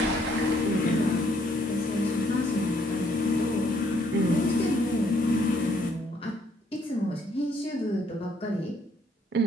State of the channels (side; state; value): both; normal; correlation 0.68